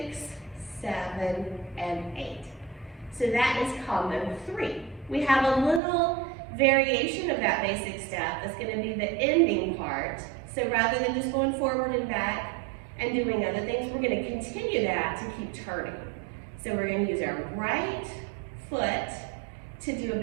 7 and 8. So that is combo 3. We have a little variation of that basic step that's going to be the ending part. So rather than just going forward and back and doing other things, we're going to continue that to keep turning. So we're going to use our right foot to do a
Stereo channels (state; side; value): drops out; left; at 5.8 s